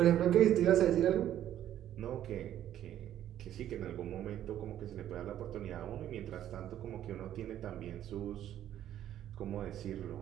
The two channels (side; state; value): left; quieter; 11.5 dB